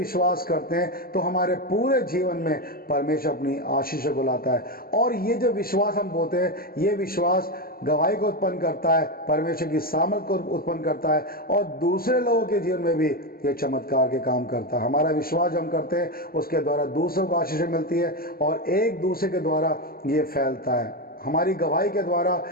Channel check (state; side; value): late; right; 0.43 ms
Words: करते हैं तो हमारे पूरे जीवन में परमेश्वर अपनी आशीषों को लाता है। और ये जो विश्वास हम बोलते हैं, ये विश्वास गवाही को उत्पन्न करता है, परमेश्वर की सामर्थ को उत्पन्न करता है और दूसरे लोगों के जीवन में भी ये चमत्कार के काम करता है। हमारा विश्वास जो हम करते हैं उसके द्वारा दूसरों को आशीषें मिलती है और एक दूसरे के द्वारा ये फैलता है, हमारी गवाही के द्वारा